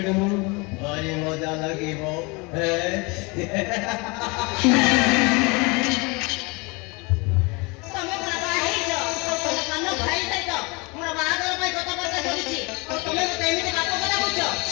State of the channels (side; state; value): right; quieter; 28.0 dB